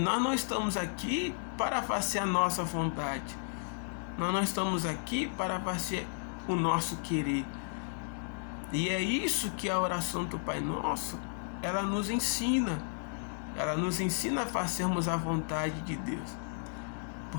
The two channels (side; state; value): right; silent; digital silence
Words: não estamos aqui para fazer a nossa vontade. Nós não estamos aqui para fazer o nosso querer. E é isso que a oração do Pai Nosso, ela nos ensina. Ela nos ensina a fazermos a vontade de Deus.